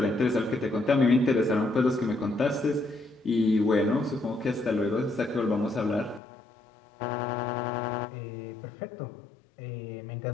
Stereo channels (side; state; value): right; drops out; at 6.2 s